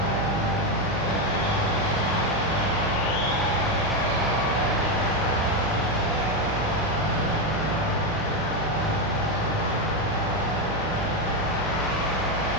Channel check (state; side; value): noise; right; hum, 7 dB below the sound